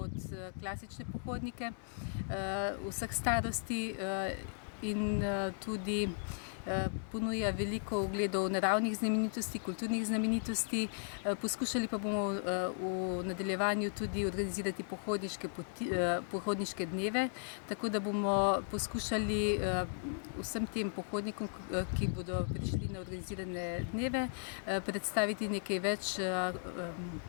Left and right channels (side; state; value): right; silent; digital silence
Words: klasične pohodnike vseh starosti in tudi ponuja veliko ogledov naravnih znamenitosti, kulturnih znamenitosti. Poskušali pa bomo v nadaljevanju tudi organizirati pohodniške dneve, tako da bomo poskušali vsem tem pohodnikom, ki bodo prišli na organizirane dneve, predstaviti nekaj več